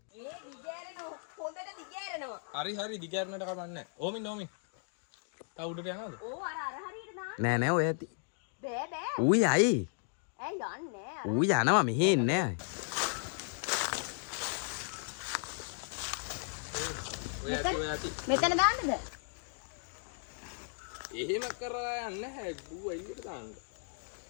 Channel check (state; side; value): silent; right; 54 dB below the other